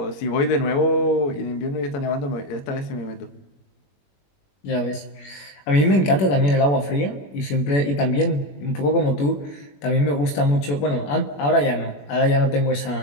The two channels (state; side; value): late; right; 21 ms